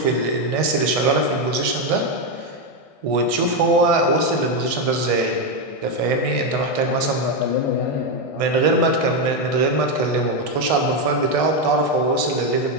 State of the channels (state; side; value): late; right; 1.6 ms